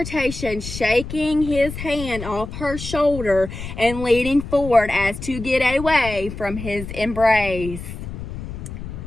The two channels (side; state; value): left; noise; rumble, 9 dB below the sound